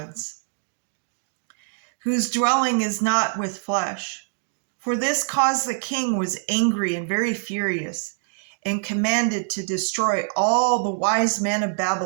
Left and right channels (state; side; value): silent; left; digital silence